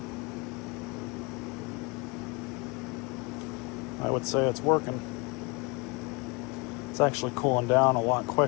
I would say it's working. It's actually cooling down a lot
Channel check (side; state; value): right; quieter; 28.2 dB